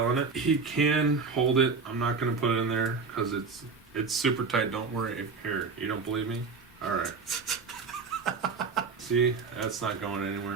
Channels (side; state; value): left; quieter; 4.7 dB